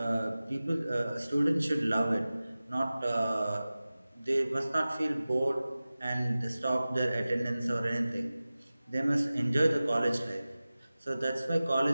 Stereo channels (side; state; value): both; inverted; correlation -0.96